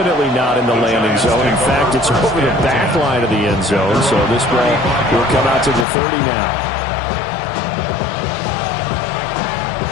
not in the landing zone. In fact, it's over the back line of the end zone. So this ball will come out to the 30 now.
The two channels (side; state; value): right; drops out; at 5.9 s